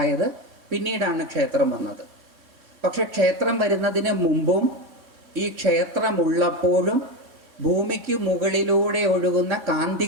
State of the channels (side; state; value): left; late; 3.6 ms